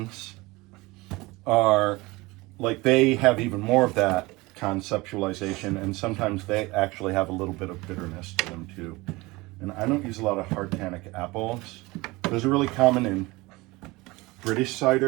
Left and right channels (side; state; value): left; quieter; 22.3 dB